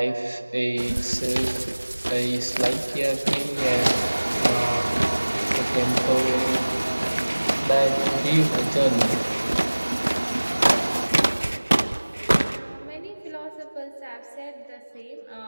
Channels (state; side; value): inverted; both; correlation -1.00